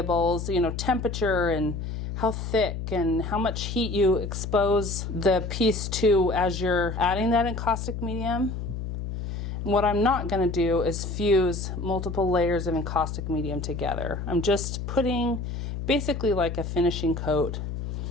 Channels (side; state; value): left; noise; hum, 5 dB below the sound